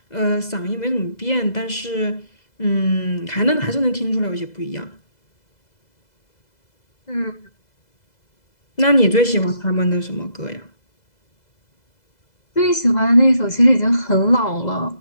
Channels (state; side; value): late; right; 2.0 ms